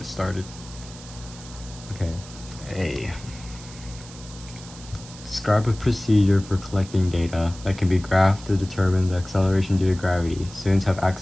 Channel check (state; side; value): noise; right; hiss, 17 dB below the sound